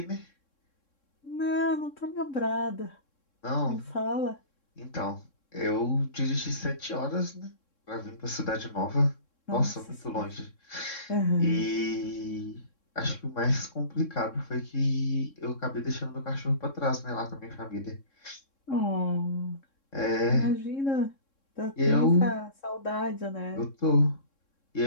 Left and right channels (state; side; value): late; right; 3.7 ms